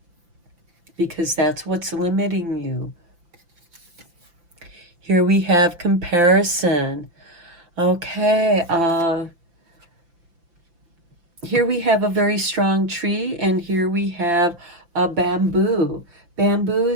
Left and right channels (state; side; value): late; left; 5.9 ms